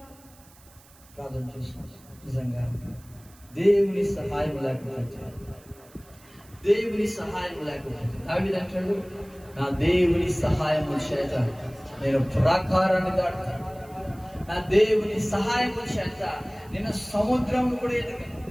ప్రార్థన చేస్తున్నాం. నిజంగా దేవుని సహాయం లేకపోతే, దేవుని సహాయం లేకపోతే దావీదు అంటాడు, నా దేవుని సహాయము చేత నేను ప్రాకారాన్ని దాటుతాను, నా దేవుని సహాయము చేత నేను సముద్రం కూడా ఎదిగాను.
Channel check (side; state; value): right; noise; hiss, 26 dB below the sound